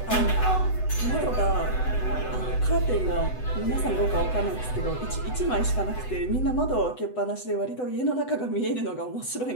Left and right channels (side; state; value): right; late; 7.9 ms